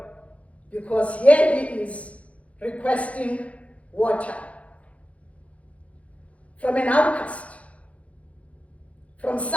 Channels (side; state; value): right; late; 0.064 ms